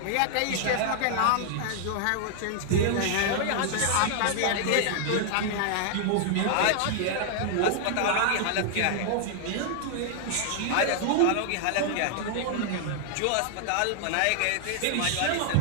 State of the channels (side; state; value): both; different; correlation 0.00